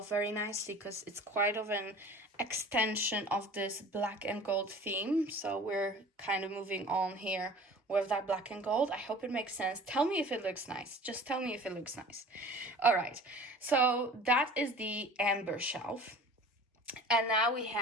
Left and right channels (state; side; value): normal; both; correlation 0.43